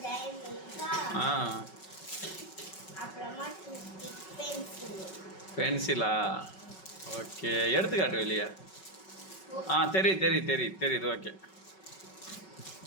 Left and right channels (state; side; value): late; right; 5.3 ms